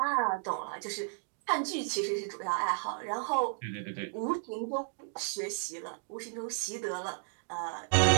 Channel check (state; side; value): silent; left; 56 dB below the other